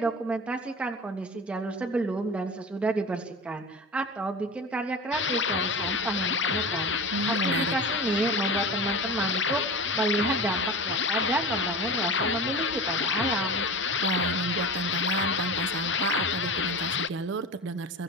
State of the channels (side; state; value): both; normal; correlation 0.30